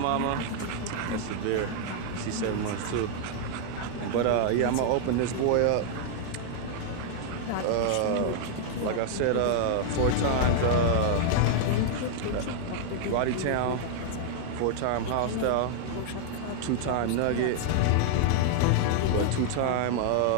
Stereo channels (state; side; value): different; both; correlation -0.01